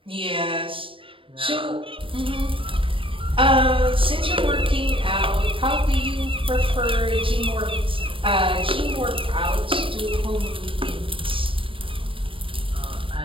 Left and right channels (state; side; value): late; left; 0.25 ms